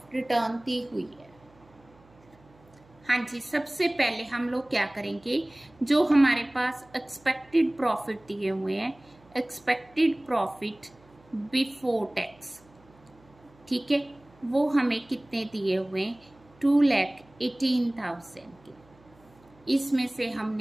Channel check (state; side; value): noise; right; hum, 28 dB below the sound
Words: return the हुई है। हाँ जी, सबसे पहले हम लोग क्या करेंगे, जो हमारे पास एक्सपेक्टेड प्रॉफिट दिए हुए हैं, एक्सपेक्टेड प्रॉफिट बिफोर टैक्स, ठीक है, वो हमें कितने दिए हुए हैं, 2,18,000 के। इसमें से